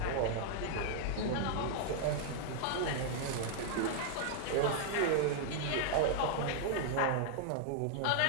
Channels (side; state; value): both; different; correlation -0.01